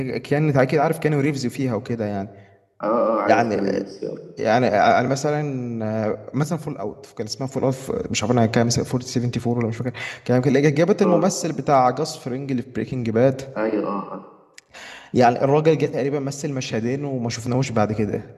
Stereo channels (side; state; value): both; identical; correlation 1.00